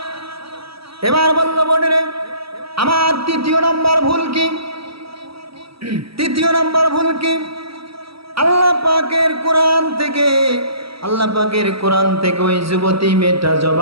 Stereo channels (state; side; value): late; left; 0.76 ms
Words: এবার বলল, বোনেরে, আমার 3য় নাম্বার ভুল কি? 3য় নাম্বার ভুল কি? আল্লাহ পাকের কোরআন থেকে ওই যুবতী মেয়েটা